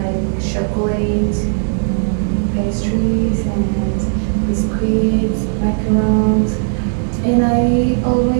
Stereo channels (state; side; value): silent; left; 68 dB below the other